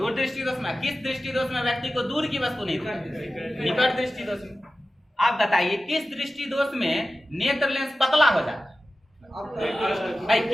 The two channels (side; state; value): both; normal; correlation 0.94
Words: दृष्टि दोष में। किस दृष्टि दोष में व्यक्ति को दूर की वस्तु नहीं दिखाई, निकट दृष्टि दोष में। आप बताइए किस दृष्टि दोष में नेत्र लेंस पतला हो जाता है, भाई